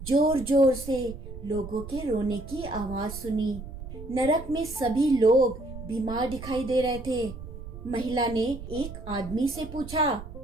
जोर जोर से लोगों के रोने की आवाज सुनी। नरक में सभी लोग बीमार दिखाई दे रहे थे। महिला ने एक आदमी से पूछा,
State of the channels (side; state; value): right; noise; rumble, 12 dB below the sound